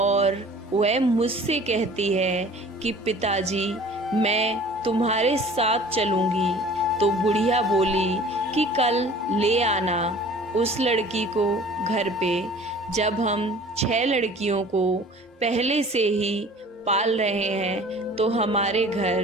वह मुझसे कहती है कि पिताजी, मैं तुम्हारे साथ चलूंगी। तो बुढ़िया बोली कि कल ले आना उस लड़की को घर पे। जब हम 6 लड़कियों को पहले से ही पाल रहे हैं तो हमारे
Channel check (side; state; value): both; normal; correlation 0.47